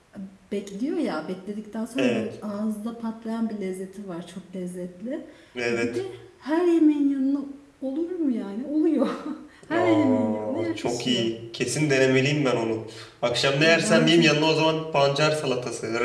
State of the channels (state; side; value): identical; both; correlation 1.00